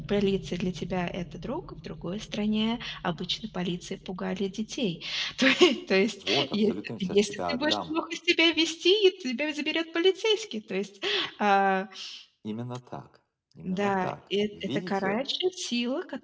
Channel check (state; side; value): identical; both; correlation 1.00